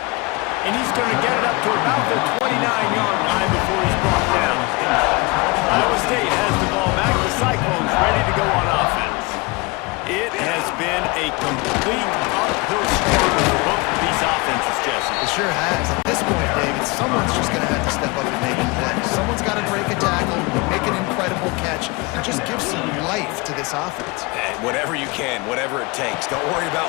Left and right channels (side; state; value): right; quieter; 26.2 dB